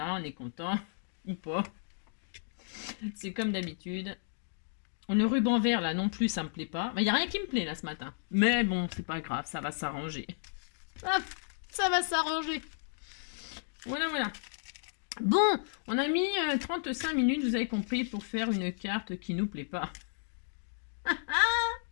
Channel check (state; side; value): silent; right; digital silence